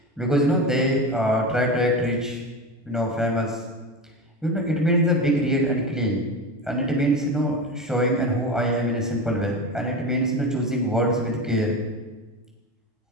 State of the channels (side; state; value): both; normal; correlation 0.24